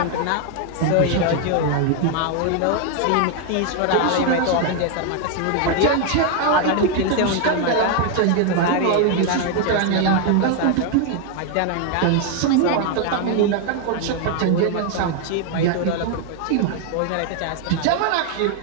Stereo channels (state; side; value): different; both; correlation 0.00